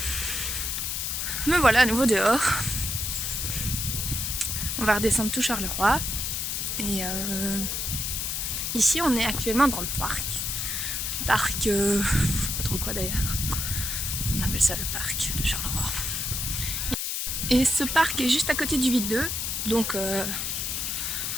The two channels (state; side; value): noise; left; hiss, 1 dB below the sound